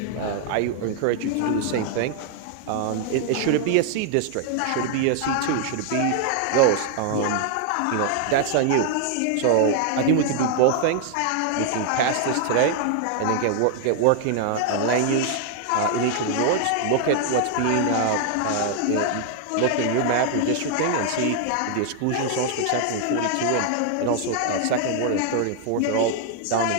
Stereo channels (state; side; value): different; both; correlation 0.00